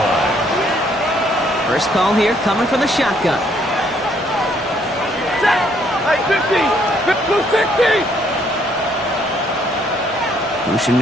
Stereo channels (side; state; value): both; normal; correlation 0.67